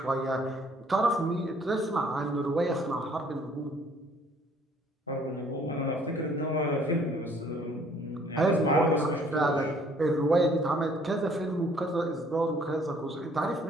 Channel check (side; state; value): both; normal; correlation 0.59